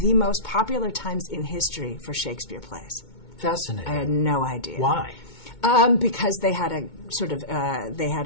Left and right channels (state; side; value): late; right; 2.2 ms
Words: the most popular times in history for Shakespeare plays. Fascinating. I had no idea. Why? Because they had a sort of